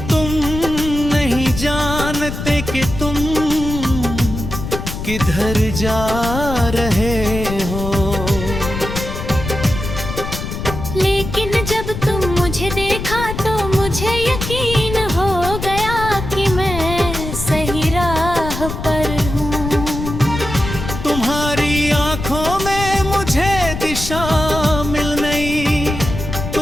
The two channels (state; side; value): noise; left; rumble, 6 dB below the sound